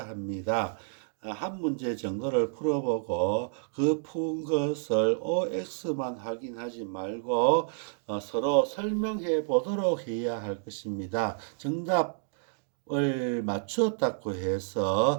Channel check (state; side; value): silent; left; digital silence